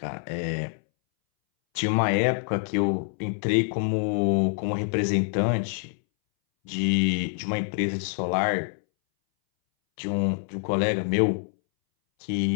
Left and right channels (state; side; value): silent; right; 61 dB below the other